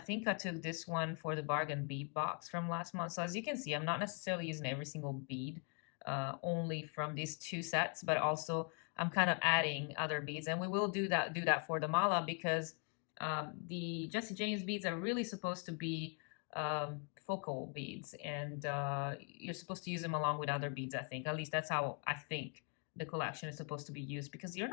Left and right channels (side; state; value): right; quieter; 37.8 dB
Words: I took this one for the bargain bead box from last month. So as you can see, I'm not necessarily using every single bead, only from these 2 sets, but also I'm kind of adding other beads. And we will do that for the mala, because the Jesse James beads are really supposed to be focal beads, and you're supposed to use them along with other beads, I think. At least that's how I think the collection is supposed to be used, because you're